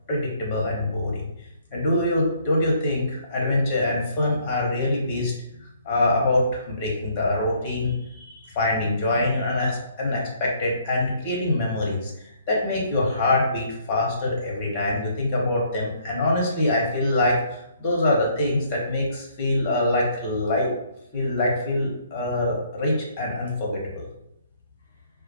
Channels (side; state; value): both; inverted; correlation -0.65